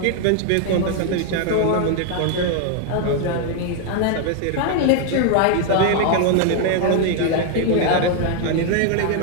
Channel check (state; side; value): different; both; correlation 0.00